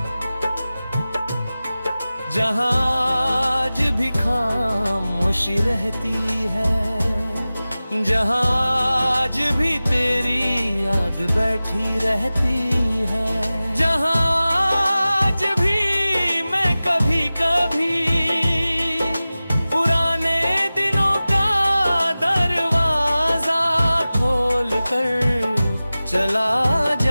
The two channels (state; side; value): inverted; both; correlation -0.97